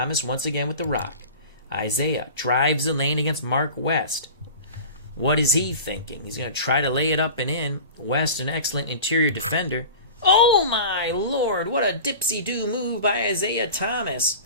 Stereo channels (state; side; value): inverted; both; correlation -0.36